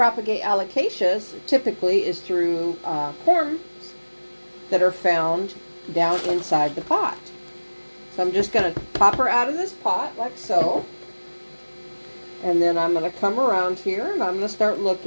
alocasias typically is through corms that are found down inside the pot. So I'm just going to pop her out of this pot like so. And then I'm going to come around here and I'm going to start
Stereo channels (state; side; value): inverted; both; correlation -1.00